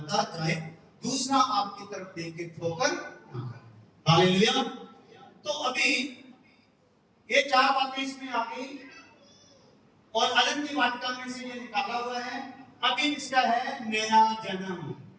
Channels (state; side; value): identical; both; correlation 1.00